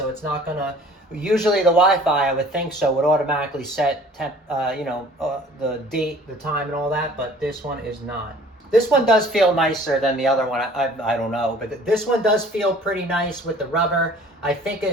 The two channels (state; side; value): normal; both; correlation 0.50